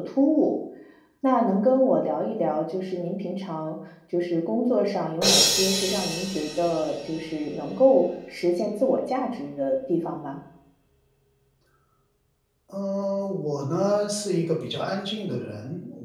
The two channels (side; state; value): both; identical; correlation 1.00